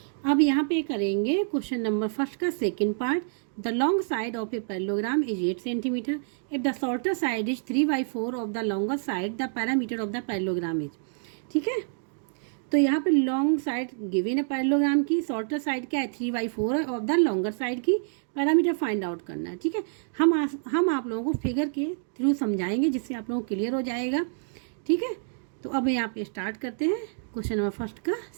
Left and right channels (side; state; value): left; silent; digital silence